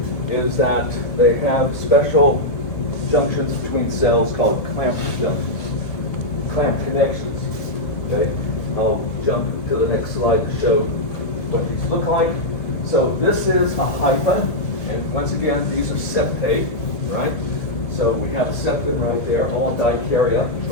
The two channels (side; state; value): right; late; 2.3 ms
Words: is that they have special junctions between cells called clamp junctions, clamp connections. Okay, I'll jump to the next slide to show what these look like. So this is a hypha, and once again, these are septate, right? So we have a septum right there, all dikarya,